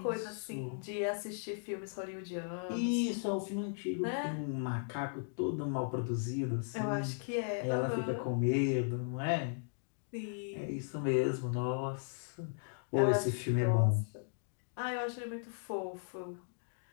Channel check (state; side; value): silent; right; digital silence